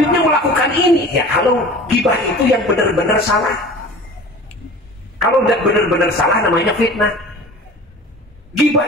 melakukan ini. Ya, kalau ghibah itu yang benar-benar salah. Kalau tidak benar-benar salah, namanya fitnah. Ghibah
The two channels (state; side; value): normal; both; correlation 0.40